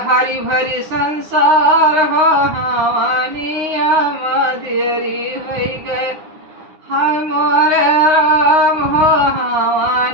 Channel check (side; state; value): left; late; 9.7 ms